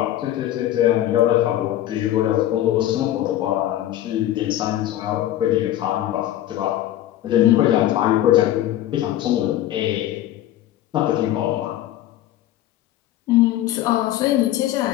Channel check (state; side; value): quieter; right; 13.1 dB